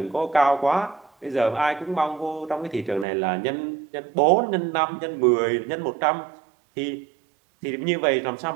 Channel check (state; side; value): drops out; left; at 3.1 s